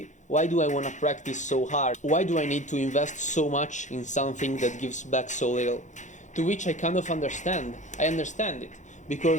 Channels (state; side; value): late; right; 0.35 ms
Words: Why do I want to practice so hard? Why do I need to invest so much in something that gives back so little? To which I kind of understand. I understand it.